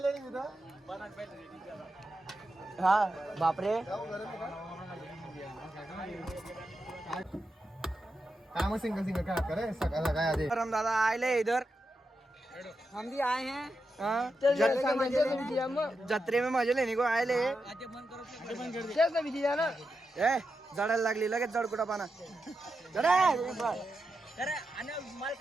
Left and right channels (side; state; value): both; normal; correlation 0.88